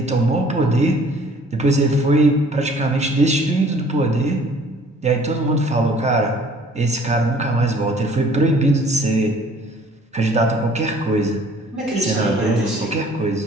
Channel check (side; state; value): both; normal; correlation 0.54